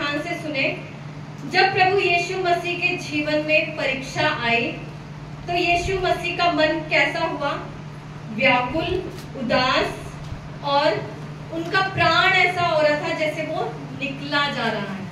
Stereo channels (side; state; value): both; identical; correlation 1.00